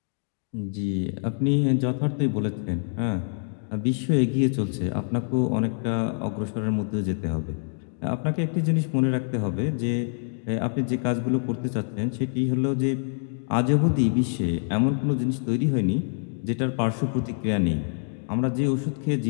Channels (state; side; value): silent; right; digital silence